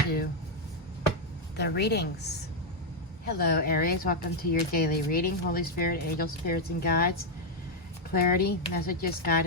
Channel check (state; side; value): normal; both; correlation 0.01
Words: the readings. Hello, Aries. Welcome to your daily reading. Holy Spirit, angels, spirits, and guides. Clarity, messages,